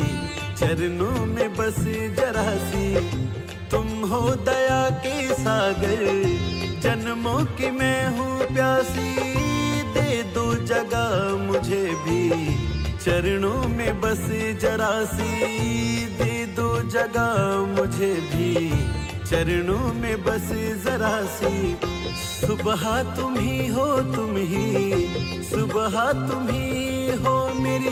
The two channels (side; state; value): both; identical; correlation 1.00